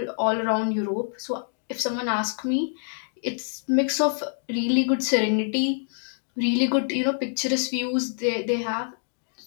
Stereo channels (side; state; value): right; silent; 61 dB below the other